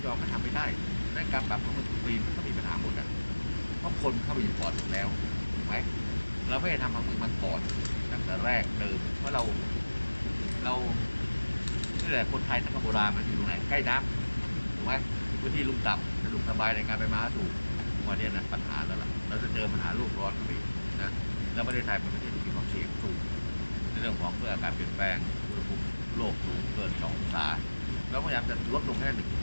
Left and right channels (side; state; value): both; inverted; correlation -1.00